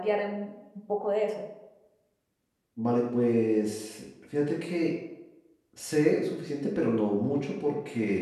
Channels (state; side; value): identical; both; correlation 1.00